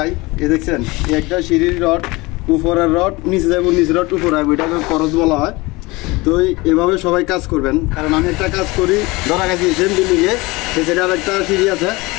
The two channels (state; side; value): quieter; right; 22.9 dB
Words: এই দেখছেন, এই একটা সিঁড়ির রড, উপরের রড নিচে যাবো, নিচে রড উপরে আসবো, এটাকে করজ বলা হয়। তো এভাবে সবাই কাজ করবেন, কারণ আমি একটা কাজ করি, ধরা গেছি সেম বিল্ডিংয়ে, সেটা আর একটা সিঁড়ি আছে,